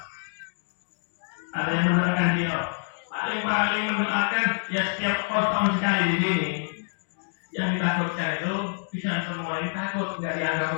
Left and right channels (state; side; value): silent; right; 60 dB below the other